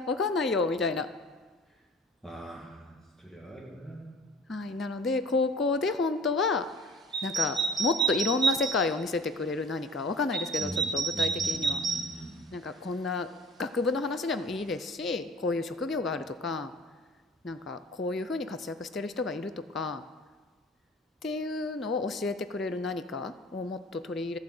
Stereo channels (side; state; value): both; normal; correlation 0.46